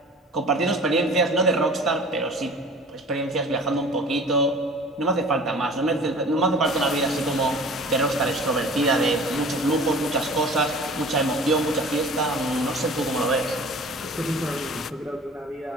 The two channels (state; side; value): normal; both; correlation 0.44